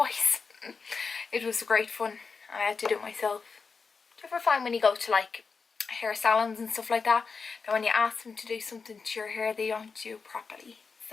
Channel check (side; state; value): right; quieter; 5.0 dB